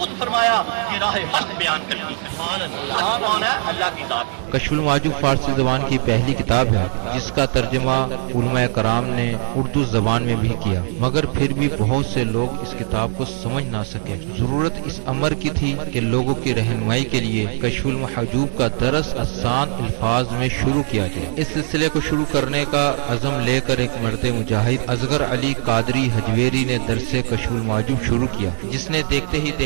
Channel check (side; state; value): left; silent; 65 dB below the other